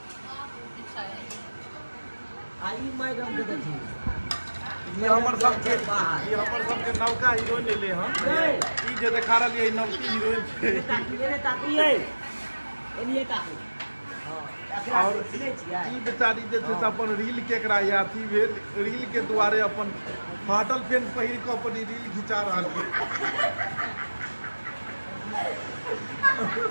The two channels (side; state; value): both; inverted; correlation -1.00